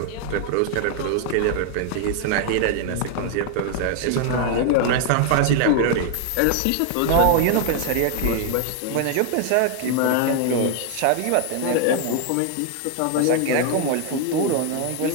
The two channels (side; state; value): both; different; correlation 0.00